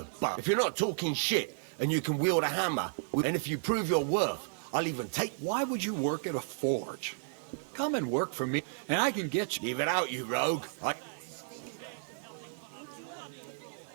buck. If you're not talking shit and you can wield a hammer, and if you prove your worth, I'll even take... Why would you work at a forge? Come and work for me, and I can get you... Leave it out, you rogue.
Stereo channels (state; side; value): silent; left; 56 dB below the other